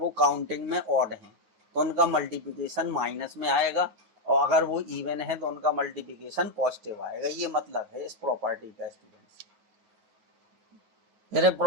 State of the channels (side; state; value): left; late; 9.6 ms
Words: काउंटिंग में ऑड हैं तो उनका मल्टीप्लिकेशन माइनस में आएगा, और अगर वो इवन है तो उनका मल्टीप्लिकेशन पॉजिटिव आएगा। ये मतलब है इस प्रॉपर्टी का स्टूडेंट्स। फिर